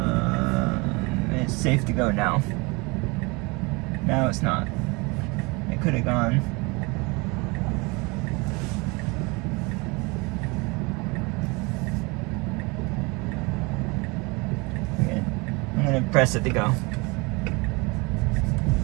It's safe to go now. Now it's not. It could have gone. Okay. I'm gonna press it to go.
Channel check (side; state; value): left; quieter; 27.0 dB